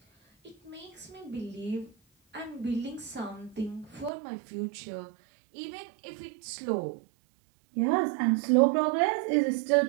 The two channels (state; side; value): drops out; left; at 4.1 s